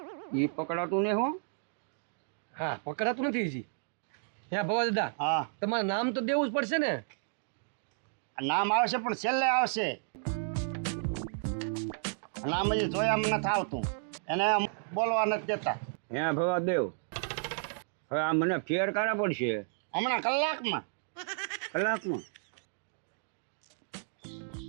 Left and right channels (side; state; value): left; silent; digital silence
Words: ઈ પકડાતું ને હું. હા, પકડાતું નથી હજી. હે ભવા દાદા, હા, તમારે નામ તો દેવું જ પડશે ને. નામ આવશે પણ છેલ્લે આવશે. નામ હજી જોયા નથી આવતું, એને બોલવા નથી દેતા. હે ભવા દેવ, હવે આ મને ફેર કાઢા પડશે હમણાં કલાકમાં. કલાકમાં.